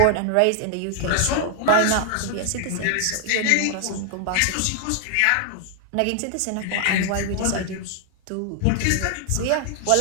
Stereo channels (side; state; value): both; different; correlation 0.00